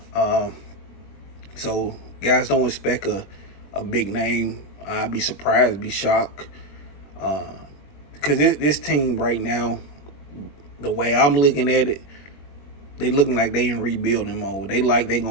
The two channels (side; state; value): right; late; 21 ms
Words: So, guys, don't expect a big name. I'd be surprised, be shocked. Because this team right now, the way I'm looking at it, they looking like they in rebuilding mode. They going